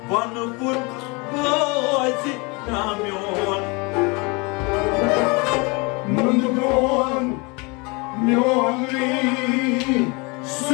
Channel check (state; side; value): quieter; right; 28.6 dB